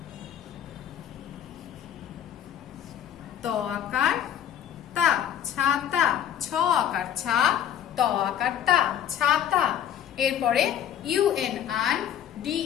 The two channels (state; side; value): quieter; right; 10.0 dB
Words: ত আকার তা, ছাতা। 6 আকার ছা, ত আকার তা, ছাতা। এরপরে UNR,